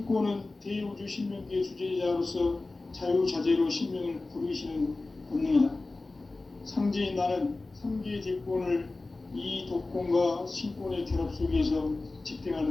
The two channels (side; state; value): right; quieter; 3.3 dB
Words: 대우주 신명계의 주제자로서 자유자재로 신명을 부르시는 권능이다. 상제인 나는 3개의 대권을 이 독권과 신권의 결합 속에서